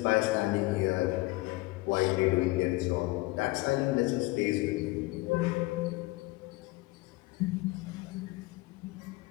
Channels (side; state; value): right; quieter; 21.6 dB